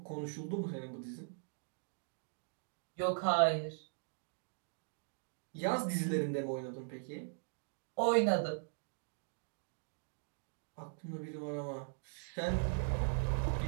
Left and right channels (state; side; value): silent; left; digital silence